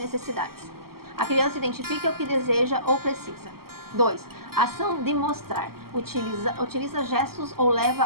A criança identifica o que deseja ou precisa. 2. Ação de mostrar. Utiliza gestos ou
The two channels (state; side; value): late; left; 0.94 ms